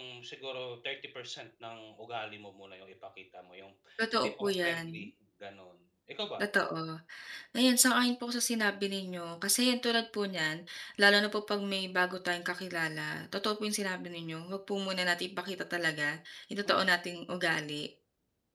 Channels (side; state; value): both; identical; correlation 1.00